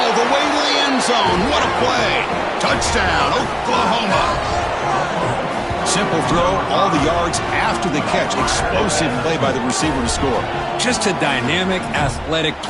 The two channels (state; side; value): identical; both; correlation 1.00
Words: the way to the end zone. What a play. Touchdown, Oklahoma. Simple throw, all the yards after the catch. Explosive play by the receiver to score. Just a dynamic, athletic